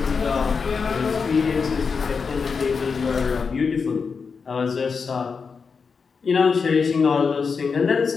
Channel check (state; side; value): quieter; right; 5.4 dB